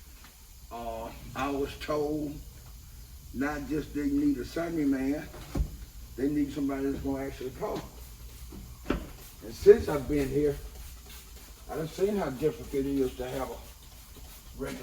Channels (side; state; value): both; identical; correlation 1.00